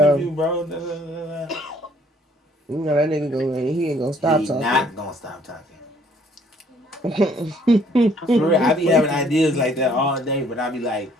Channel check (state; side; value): normal; both; correlation 0.61